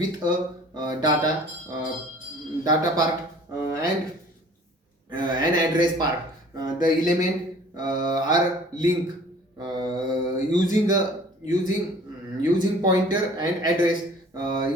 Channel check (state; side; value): normal; both; correlation 0.50